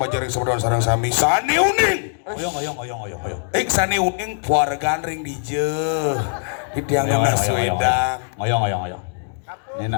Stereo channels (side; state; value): right; silent; digital silence